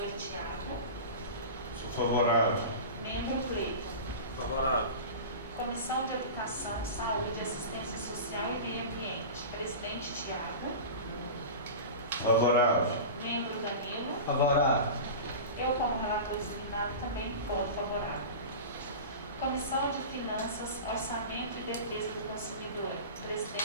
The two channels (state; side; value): inverted; both; correlation -0.31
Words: Tiago. Sou favorável. Membro Cleiton. Favorável. Comissão de Educação, Saúde, Assistência Social e Meio Ambiente. Presidente Tiago. Favorável. Membro Danilo. Favorável. Eu, como relator designado, também voto favorável. Comissão de Finanças, Orçamento e Defesa do Consumidor.